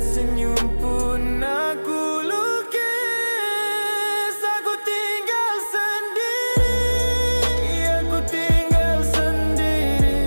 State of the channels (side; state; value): both; inverted; correlation -1.00